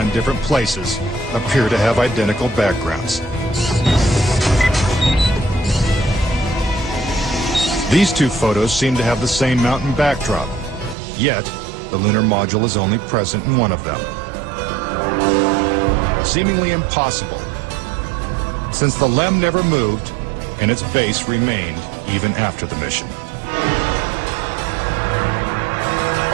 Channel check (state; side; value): drops out; left; at 11.0 s